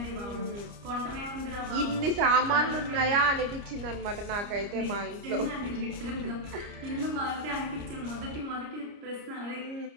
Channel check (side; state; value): left; late; 29 ms